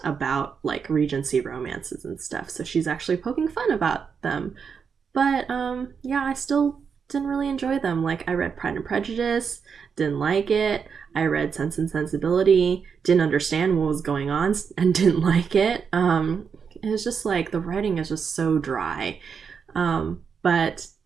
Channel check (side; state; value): left; quieter; 6.3 dB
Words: about like Regency romances and stuff, so she's actually poking fun about them. But yeah, I still didn't really enjoy them. Like I read Pride and Prejudice, didn't like it. I read Sense and Sensibility, didn't understand what was going on and didn't like it. It was just like the writing is just so dry. But